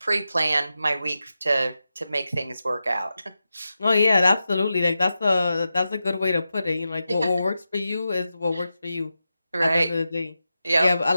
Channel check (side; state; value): both; inverted; correlation -0.91